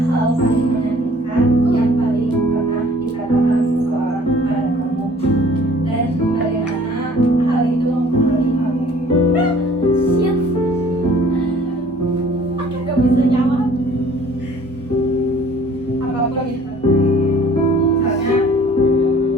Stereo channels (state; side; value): normal; both; correlation 0.53